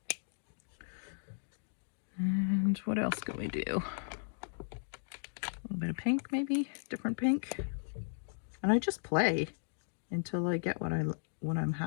And what else can we do? A little bit of pink, maybe, different pink. And I just play until I get what I'm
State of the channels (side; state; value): right; silent; digital silence